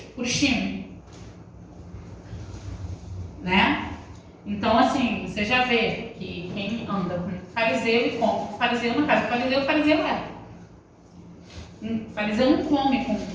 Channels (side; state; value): both; identical; correlation 1.00